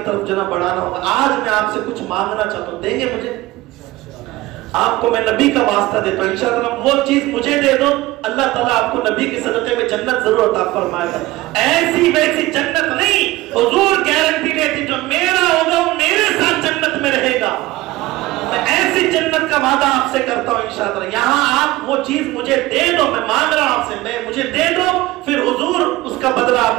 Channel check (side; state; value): left; quieter; 18.5 dB